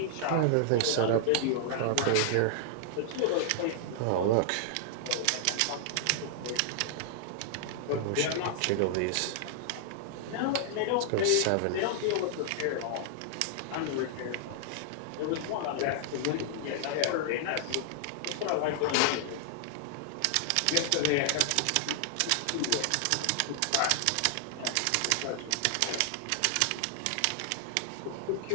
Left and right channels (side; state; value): both; different; correlation -0.01